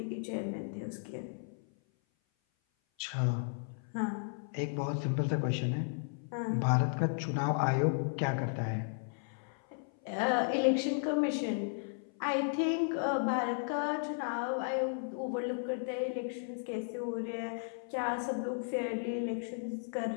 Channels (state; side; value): silent; right; 55 dB below the other